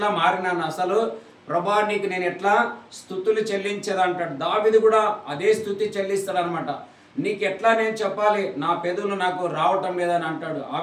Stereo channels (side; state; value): both; identical; correlation 1.00